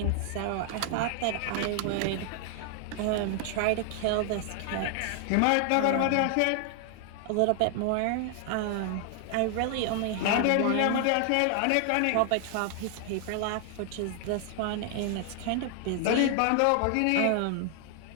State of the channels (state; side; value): different; both; correlation 0.00